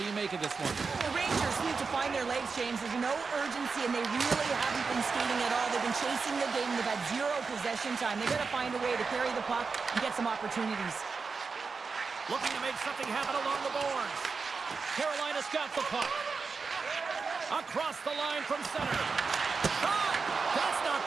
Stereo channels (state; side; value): quieter; left; 4.8 dB